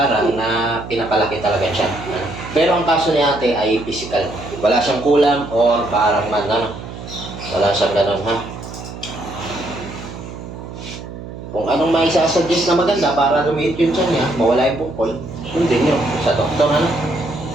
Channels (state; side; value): noise; right; hum, 12 dB below the sound